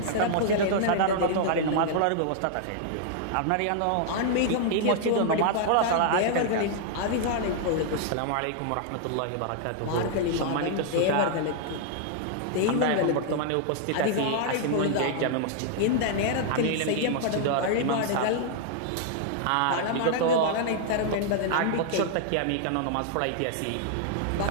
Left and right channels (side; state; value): both; different; correlation -0.01